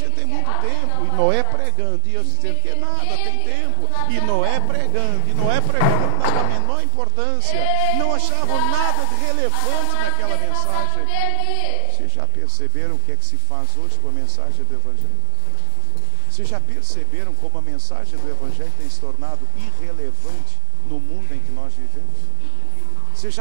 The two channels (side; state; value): both; different; correlation 0.00